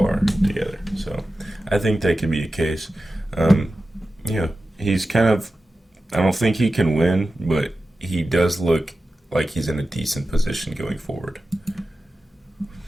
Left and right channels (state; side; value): normal; both; correlation 0.93